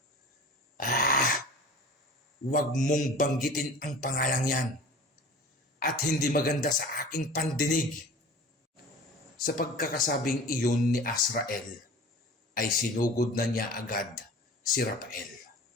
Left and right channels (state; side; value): normal; both; correlation 0.40